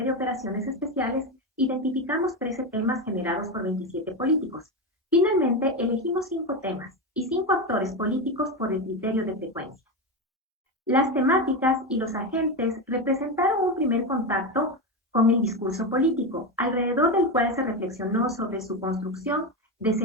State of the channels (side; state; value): both; normal; correlation 0.16